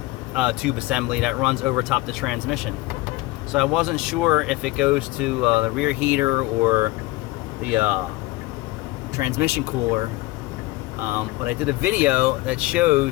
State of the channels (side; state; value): right; quieter; 19.9 dB